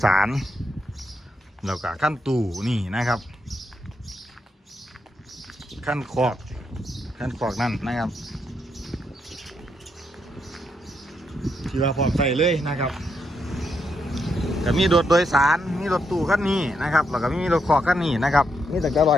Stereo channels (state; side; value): normal; both; correlation 0.80